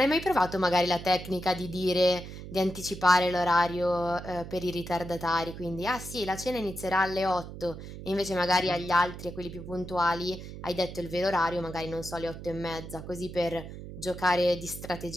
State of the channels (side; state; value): right; noise; hum, 11 dB below the sound